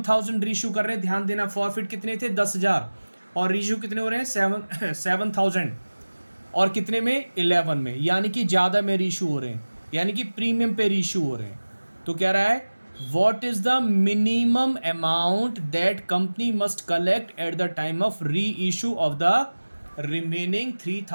रीशू कर रहे हैं, ध्यान देना। फॉरफिट कितने थे? 10,000। और रीशू कितने हो रहे हैं? 7,000। और कितने में? 11 में, यानी कि ज़्यादा में रीशू हो रहे हैं, यानी कि प्रीमियम पे रीशू हो रहे हैं। तो कह रहा है what is the minimum amount that company must collect at the time of री issue of the remaining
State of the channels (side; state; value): both; inverted; correlation -1.00